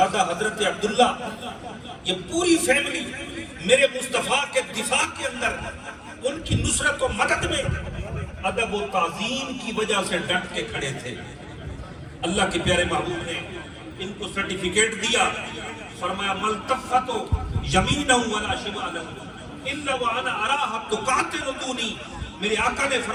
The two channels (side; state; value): both; identical; correlation 1.00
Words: حضرت عبداللہ, یہ پوری فیملی میرے مصطفیٰ کے دفاع کے اندر ان کی نصرت و مدد میں ادب و تعظیم کی وجہ سے ڈٹ کے کھڑے تھے. اللہ کے پیارے محبوب نے ان کو سرٹیفکیٹ دیا, فرمایا ملتفتو یمینہ ولا شمالہ الا وانا اراها تقاتل دونی. میرے آقا نے